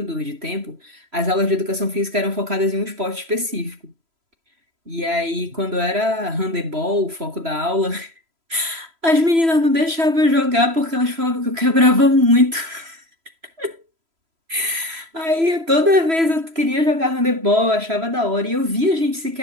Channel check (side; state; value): left; late; 3.0 ms